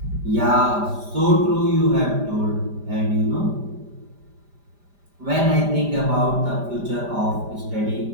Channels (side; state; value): left; late; 5.0 ms